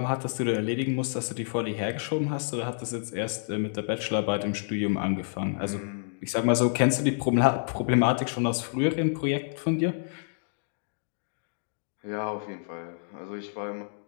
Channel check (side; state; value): right; silent; digital silence